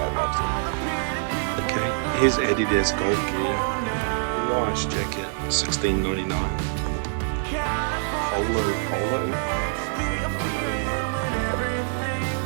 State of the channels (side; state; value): left; silent; 62 dB below the other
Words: loves it. Okay, here's Adidas golf gear. Nice jacket, $16.99. Polo.